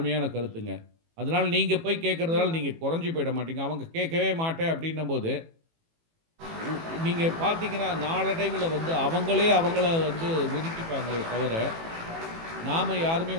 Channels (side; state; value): left; late; 18 ms